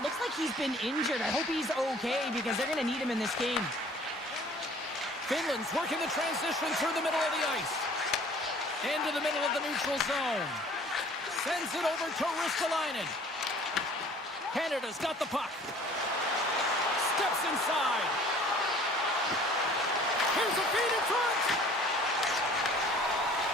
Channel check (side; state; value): both; normal; correlation 0.51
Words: like he's been injured. I hope he's okay because they're going to need him in this game. Finland's working the transition through the middle of the ice. Into the middle of the neutral zone. Sends it over to Ristolainen. Canada's got the puck. Steps inside. Here's a feed in front.